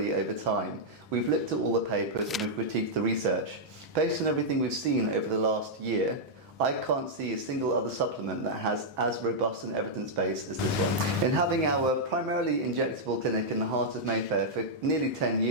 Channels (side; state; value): both; normal; correlation -0.06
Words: over time. We've looked at all the papers and we've critiqued the research. Based on everything we've seen over the last year, I can't see a single other supplement that has as robust an evidence base as this one. In having our primarily injectable clinic in the heart of Mayfair for nearly 10